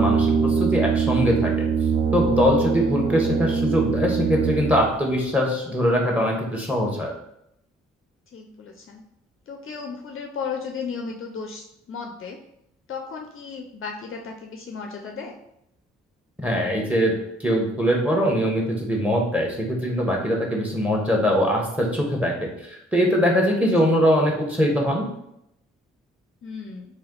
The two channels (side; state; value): both; normal; correlation 0.64